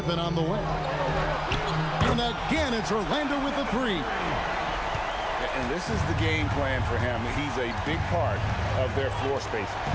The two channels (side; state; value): both; identical; correlation 1.00